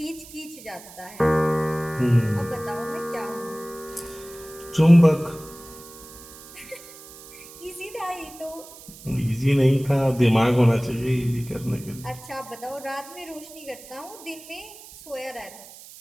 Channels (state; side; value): noise; right; hiss, 18 dB below the sound